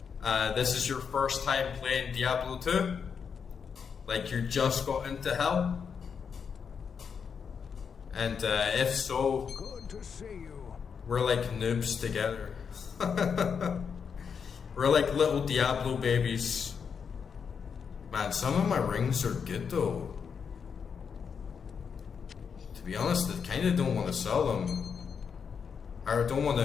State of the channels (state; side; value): quieter; right; 6.5 dB